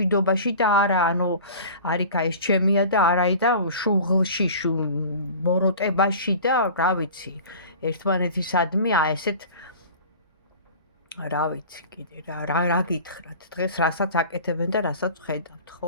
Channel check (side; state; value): both; inverted; correlation -0.40